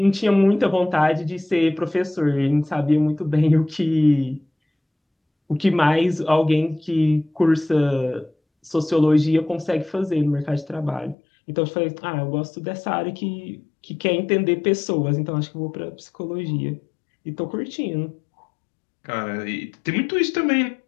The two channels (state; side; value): drops out; right; at 11.2 s